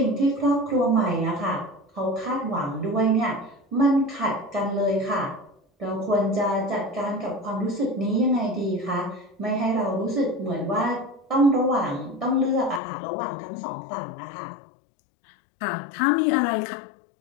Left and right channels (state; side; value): drops out; right; at 12.8 s